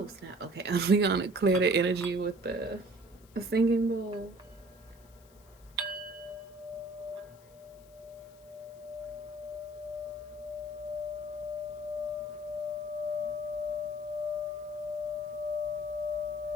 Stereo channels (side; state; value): left; noise; hiss, 27 dB below the sound